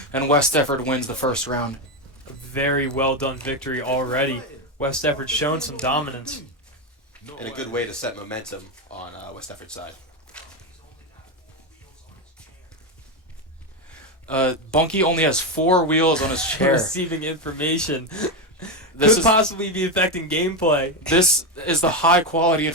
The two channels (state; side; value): normal; both; correlation 0.11